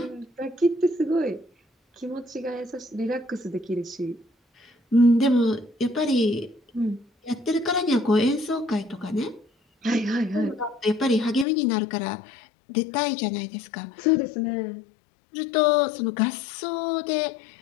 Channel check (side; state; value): right; drops out; at 11.5 s